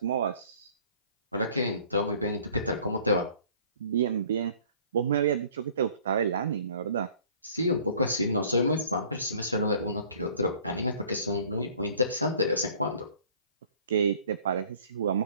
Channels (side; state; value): both; inverted; correlation -0.54